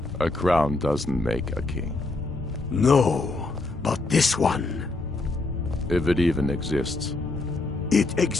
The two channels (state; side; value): quieter; right; 3.2 dB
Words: A crown doesn't make a king. No, but this one. If it even exists. It